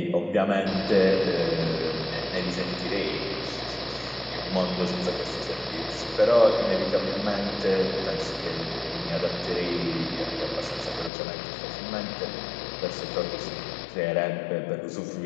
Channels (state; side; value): drops out; right; at 11.1 s